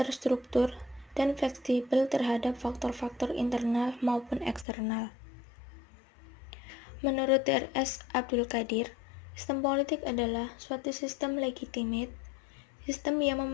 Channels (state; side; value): drops out; right; at 4.7 s